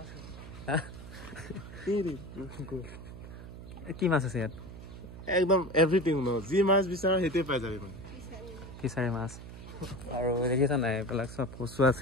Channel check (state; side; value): noise; right; hum, 13 dB below the sound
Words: কি মাছ আছে ইয়াত একদম এভৰিথিং ন যি মাছ বিচাৰা সেইটোৱে পাই যাবি মানে ফিচাৰী মাছ আৰু দেখিছা নাই এইবিলাক চব কচু